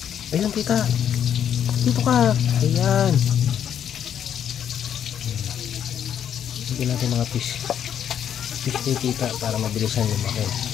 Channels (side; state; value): right; quieter; 9.2 dB